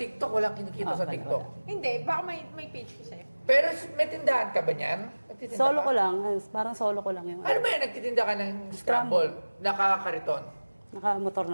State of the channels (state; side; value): inverted; both; correlation -1.00